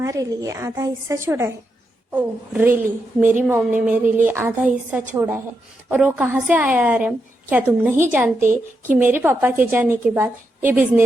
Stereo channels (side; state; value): both; normal; correlation 0.84